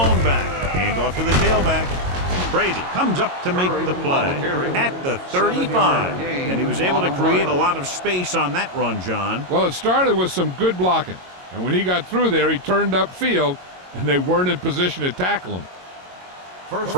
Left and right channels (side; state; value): left; late; 22 ms